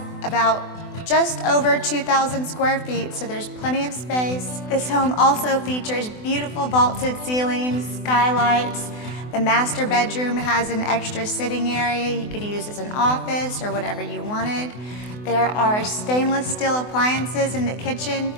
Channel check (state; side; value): late; right; 24 ms